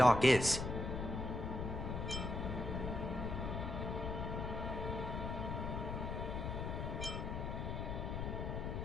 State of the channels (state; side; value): noise; left; rumble, 3 dB below the sound